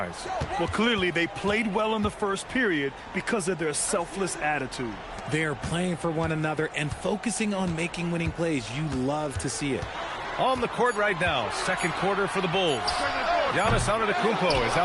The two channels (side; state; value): both; identical; correlation 1.00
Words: Well, clearly they played well in the first period because of their selfless attitude. They're playing for one another and focusing on making winning plays. You love to see it. On the court right now, second quarter for the Bulls. Giannis Antetokounmpo is